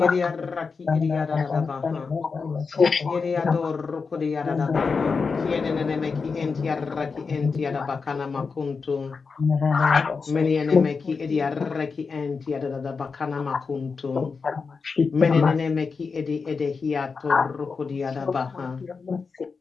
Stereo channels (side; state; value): right; quieter; 5.0 dB